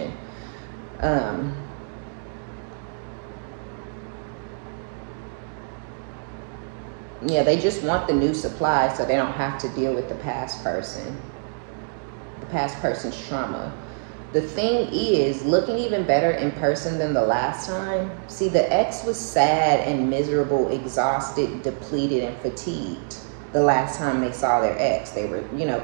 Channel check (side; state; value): left; silent; digital silence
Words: Yeah, they just want the new supply so they don't have to deal with the past person, the past person's trauma. The thing is, looking even better in person than the last time. See, the ex was sad and miserable, exhausted, depleted, and fatigued the last time they saw their ex. They were, you know,